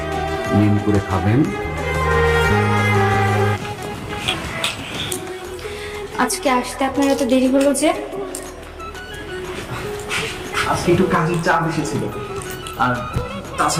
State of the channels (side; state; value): both; identical; correlation 1.00